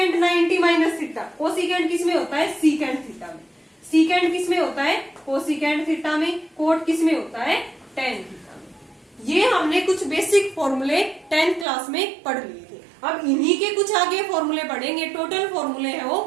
90 माइनस थीटा, कोसिकेंट किस में होता है? सीकेंट थीटा में। सीकेंट किस में होता है? कोसिकेंट थीटा में। कोट किस में होता है? टेन थीटा में। ये हमने कुछ बेसिक फॉर्मूले 10th क्लास में पढ़ लिए थे। अब इन्हीं के कुछ आगे फॉर्मूले पढ़ेंगे, टोटल फॉर्मूले है वो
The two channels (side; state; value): left; drops out; at 11.7 s